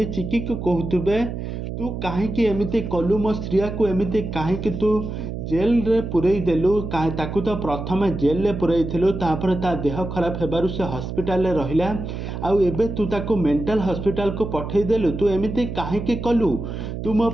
ଚିକିକୁ କହୁଥିବେ, ତୁ କାହିଁକି ଏମିତି କଲୁ, ମୋ ସ୍ତ୍ରୀକୁ ଏମିତି କାହିଁକି ତୁ ଜେଲରେ ପୁରେଇ ଦେଲୁ। ତାକୁ ତ ପ୍ରଥମେ ଜେଲରେ ପୁରେଇଥିଲୁ, ତାପରେ ତା ଦେହ ଖରାପ ହେବାରୁ ସେ ହସ୍ପିଟାଲରେ ରହିଲା, ଆଉ ଏବେ ତୁ ତାକୁ ମେଣ୍ଟାଲ ହସ୍ପିଟାଲକୁ ପଠେଇ ଦେଲୁ। ତୁ ଏମିତି କାହିଁକି କଲୁ? ତୁ ମୋ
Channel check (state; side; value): noise; right; hum, 6 dB below the sound